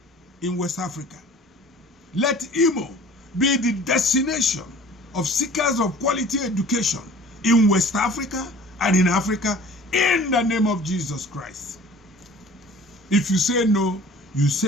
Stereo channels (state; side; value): normal; both; correlation 0.47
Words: in West Africa. Let Imo be the destination of seekers of quality education in West Africa and in Africa in the name of Jesus Christ. If you say no, you